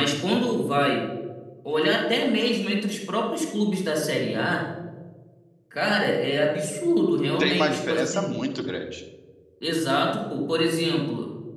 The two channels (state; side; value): identical; both; correlation 1.00